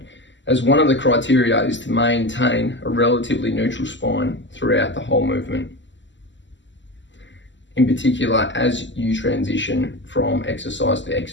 as one of the criteria is to maintain a relatively neutral spine throughout the whole movement. In particular, as you transition from exercise to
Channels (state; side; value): late; right; 0.54 ms